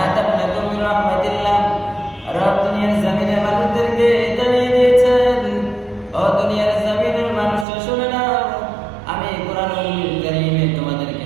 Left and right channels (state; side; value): drops out; left; at 7.7 s